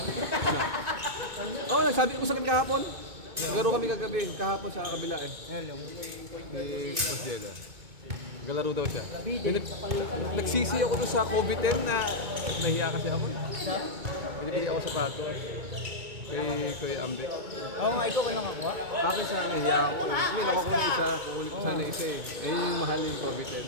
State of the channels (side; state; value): left; late; 2.2 ms